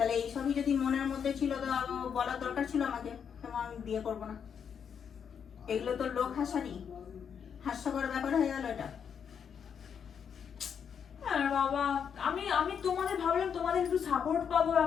এইসবই যদি মনের মধ্যে ছিল তো বলার দরকার ছিল আমাকে, তেমন আমি বিয়ে করবো না। এগুলো তো লোক হাস্যকর ব্যাপার হয়ে গেল এটা। বাবা, আমি তোমাদের ভাবলাম তোমাদের একটু সাপোর্ট পাবো,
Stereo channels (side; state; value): right; quieter; 7.4 dB